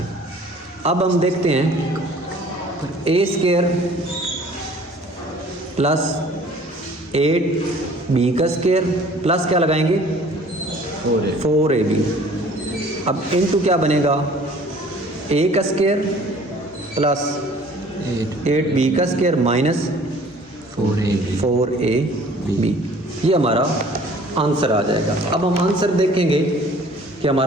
अब हम देखते हैं a स्क्वायर प्लस 8b का स्क्वायर प्लस क्या लगाएंगे, 4ab अब इनटू क्या बनेगा, ए का स्क्वायर प्लस 8b का स्क्वायर माइनस 4ab, ये हमारा आंसर आ जाएगा। अब हम आंसर देखेंगे कि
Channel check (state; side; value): normal; both; correlation 0.51